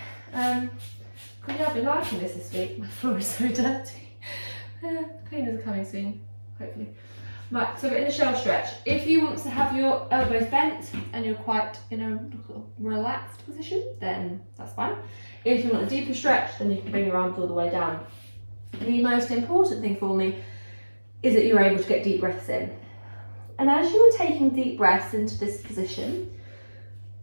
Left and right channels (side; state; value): both; inverted; correlation -1.00